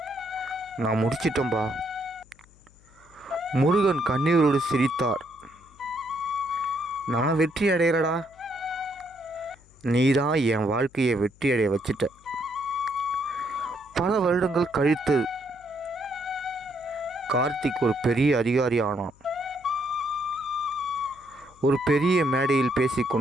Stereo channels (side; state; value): left; noise; hum, 27 dB below the sound